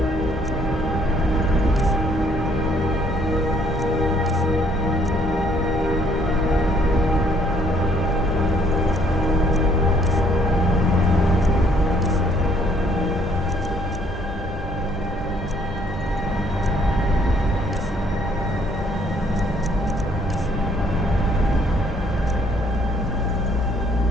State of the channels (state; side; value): normal; both; correlation 0.64